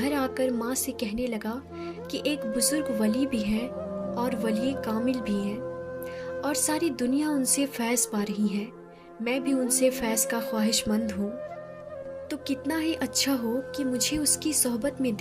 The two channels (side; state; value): both; identical; correlation 1.00